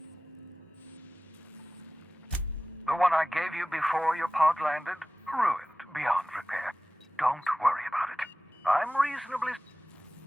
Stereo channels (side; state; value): both; normal; correlation 0.96